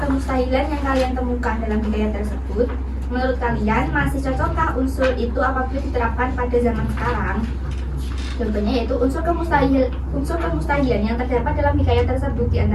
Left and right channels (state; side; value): identical; both; correlation 1.00